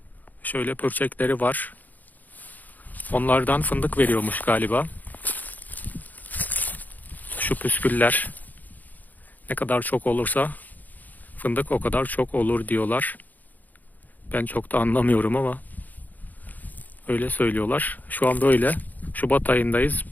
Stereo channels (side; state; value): right; late; 0.082 ms